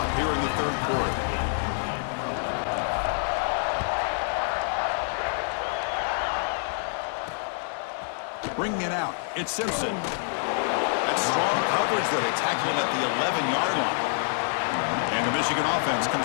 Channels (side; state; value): right; silent; digital silence